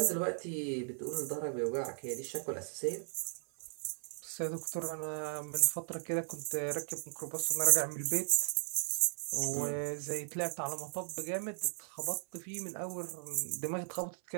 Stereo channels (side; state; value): left; silent; 53 dB below the other